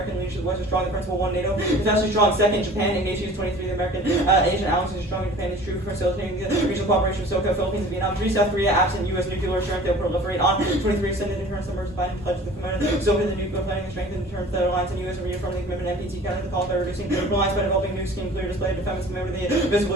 leadership. West is strong. The principle 1. NATO is actually strong. 2nd. Japan Ignatius. 23. The American Asian alliance is strong. Japan is true for facilitating the regional cooperation of SoCo, Philippines, and Vietnam. 3. South Korea absent U.S. nuclear strength. They'll proliferate on. 23. Extended deterrence numbers. Biden pledge the commitment. SoCo the nuclear planning and strength and deterrence that alliance and U.S. are reaffirming the commitment. NPT counter the call by reducing reliance by developing new scheme clear display defense commitment to the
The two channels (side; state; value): both; normal; correlation 0.45